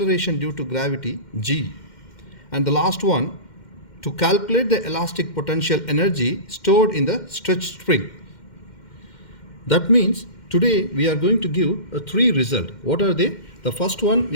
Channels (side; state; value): right; late; 2.1 ms